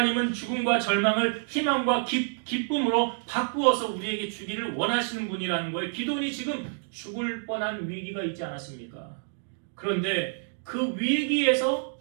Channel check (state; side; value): silent; left; digital silence